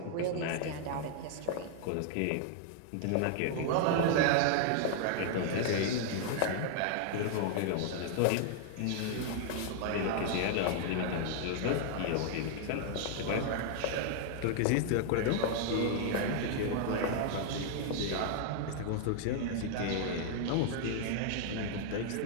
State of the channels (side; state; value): both; different; correlation 0.00